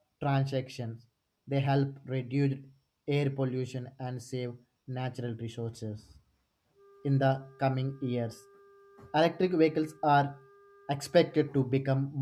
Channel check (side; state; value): both; identical; correlation 1.00